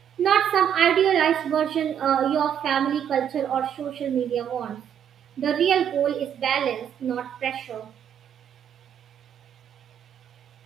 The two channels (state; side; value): quieter; left; 9.0 dB